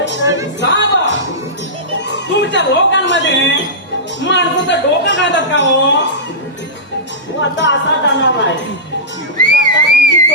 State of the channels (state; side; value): normal; both; correlation -0.16